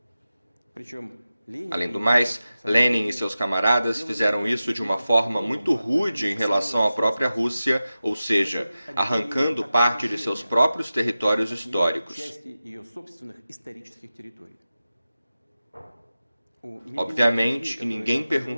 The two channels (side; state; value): both; inverted; correlation -0.94